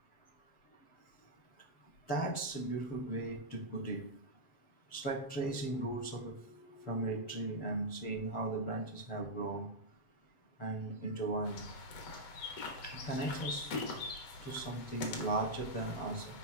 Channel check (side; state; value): right; late; 7.6 ms